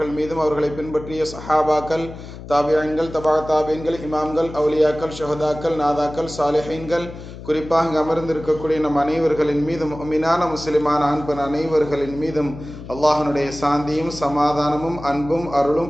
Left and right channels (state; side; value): noise; left; hum, 13 dB below the sound